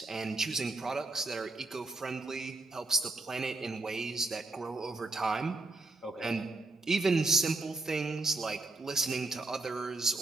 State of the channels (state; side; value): quieter; left; 3.1 dB